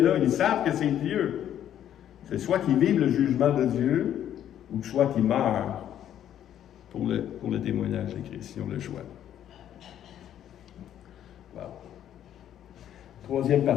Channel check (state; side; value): quieter; right; 10.7 dB